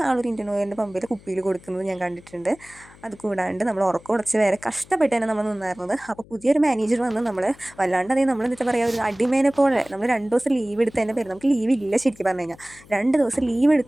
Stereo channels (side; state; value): left; noise; hum, 24 dB below the sound